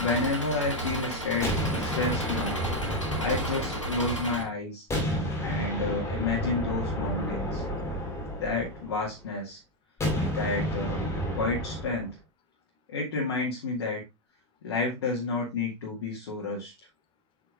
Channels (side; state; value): both; normal; correlation 0.03